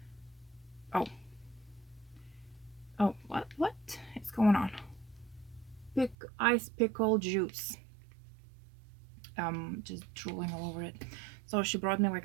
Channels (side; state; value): left; drops out; at 6.2 s